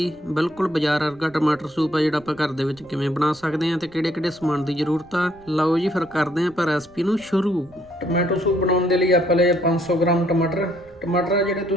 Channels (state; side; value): noise; right; rumble, 27 dB below the sound